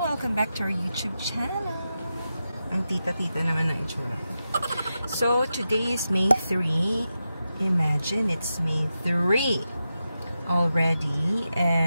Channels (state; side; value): inverted; both; correlation -0.90